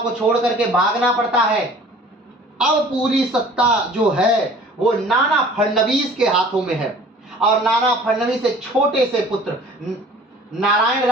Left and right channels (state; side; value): normal; both; correlation 0.48